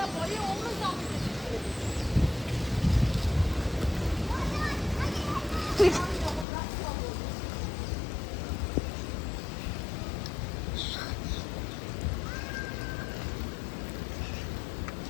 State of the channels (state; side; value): drops out; right; at 6.5 s